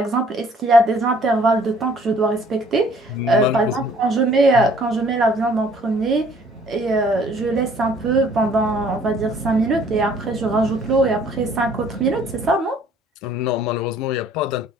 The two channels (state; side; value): normal; both; correlation 0.58